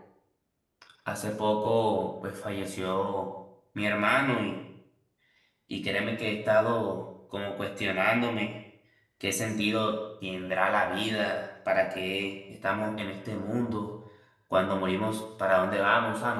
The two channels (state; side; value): identical; both; correlation 1.00